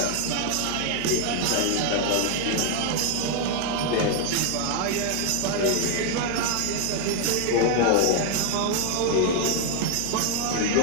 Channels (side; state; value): both; different; correlation 0.00